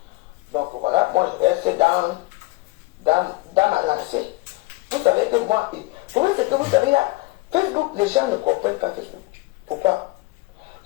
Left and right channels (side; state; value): right; quieter; 22.4 dB